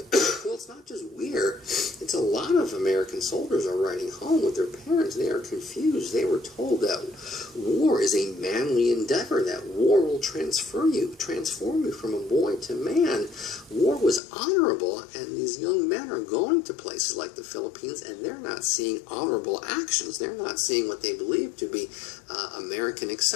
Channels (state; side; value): drops out; right; at 14.2 s